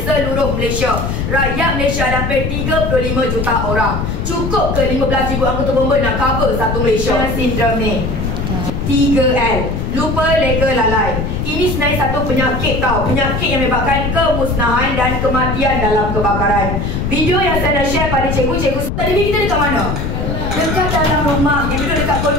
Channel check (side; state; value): left; noise; rumble, 2 dB below the sound